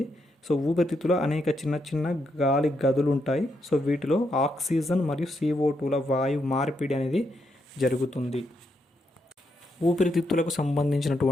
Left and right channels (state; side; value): normal; both; correlation 0.80